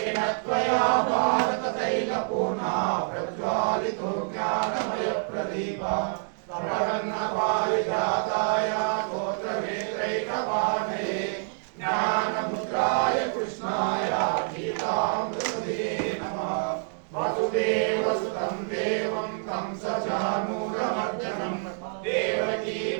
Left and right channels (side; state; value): left; silent; digital silence